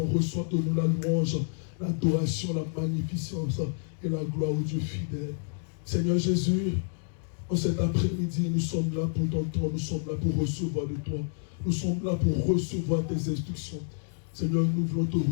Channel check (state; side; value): silent; right; digital silence